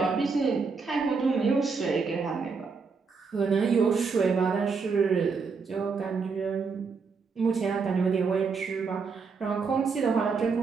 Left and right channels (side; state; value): left; quieter; 5.0 dB